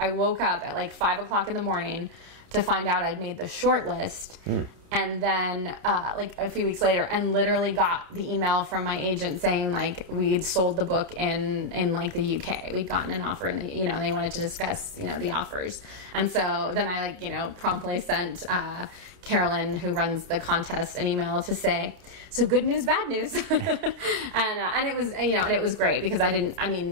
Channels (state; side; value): late; left; 30 ms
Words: woke up at like 5 o'clock in the morning to find out I'd made the short list. And then like a few weeks later, and literally got the email from my agent saying like we'd sold the book in like the UK. We'd gotten an offer in the, you know, and they wanted to discuss, you know, the offers. And so then I like, you know, promptly sent Carolyn, who runs the contest, an email to say, so good news, bad news. and it was, you know, and it was great because at